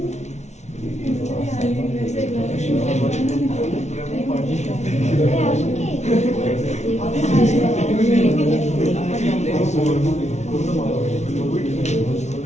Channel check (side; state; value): right; late; 0.32 ms